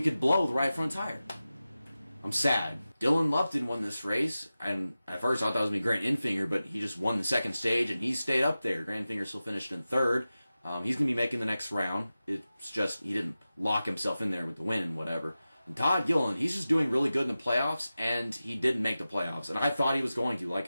could blow the right front tire. I'm sad. Dylan Lupton won this race, and at first I thought it was going to be Grant Enfinger, but he just won the second stage, and he stayed up there. Grant Enfinger still finished in 3rd. He's going to be making the next round. It's just he didn't lock himself in there with the win and whatever. And Todd Gilliland, he's just doing really good in the playoffs, and he didn't make the playoffs. And I thought he was going to, like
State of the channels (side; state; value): both; inverted; correlation -0.94